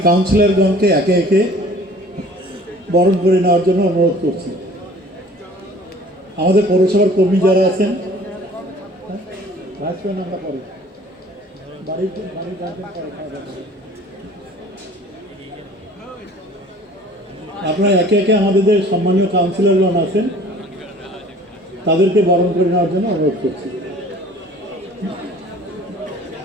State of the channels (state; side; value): normal; both; correlation 0.50